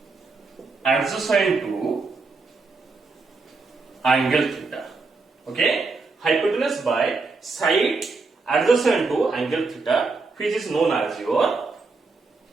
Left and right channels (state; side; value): quieter; left; 4.0 dB